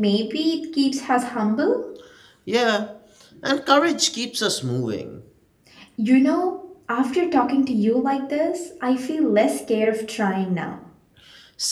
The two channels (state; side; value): identical; both; correlation 1.00